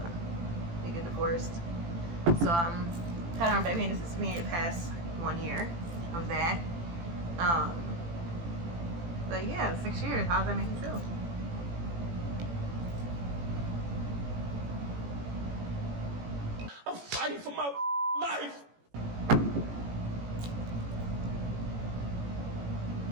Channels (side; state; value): left; late; 18 ms